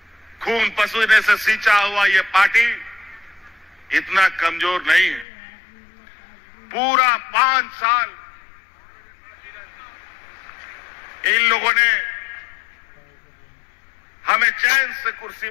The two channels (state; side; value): drops out; right; at 5.2 s